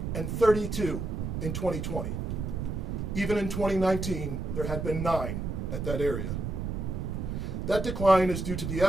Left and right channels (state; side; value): noise; right; rumble, 3 dB below the sound